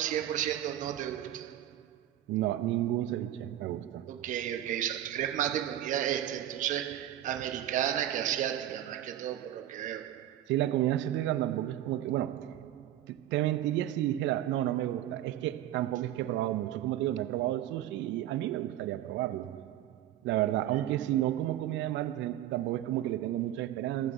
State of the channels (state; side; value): quieter; left; 12.6 dB